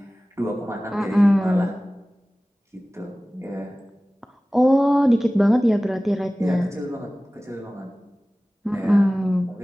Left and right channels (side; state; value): both; normal; correlation 0.98